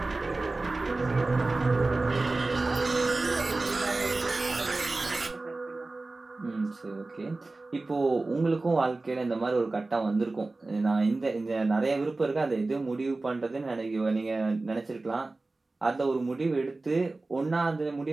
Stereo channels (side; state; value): left; quieter; 3.3 dB